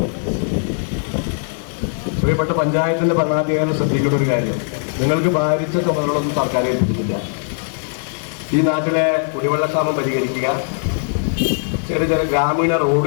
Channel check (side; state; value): right; silent; digital silence